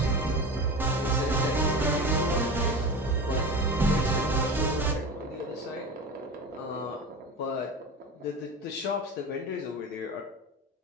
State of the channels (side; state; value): both; normal; correlation 0.29